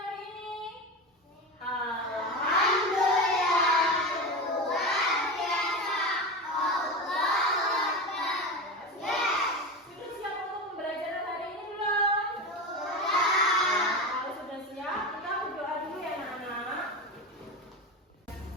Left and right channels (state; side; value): normal; both; correlation 0.23